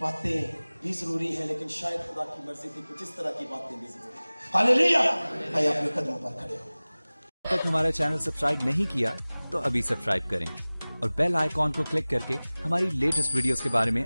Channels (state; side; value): inverted; both; correlation -0.99